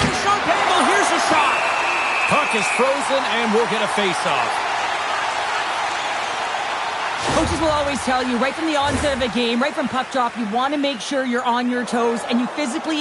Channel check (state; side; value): identical; both; correlation 1.00